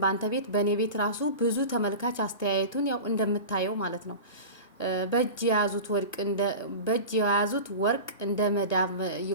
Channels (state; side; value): inverted; both; correlation -0.31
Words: በአንተ ቤት በእኔ ቤት ራሱ ብዙ ተመልካች አስተያየቱን ያው እንደምታየው ማለት ነው። በእጅ የያዙት ወርቅ እንደ መዳብ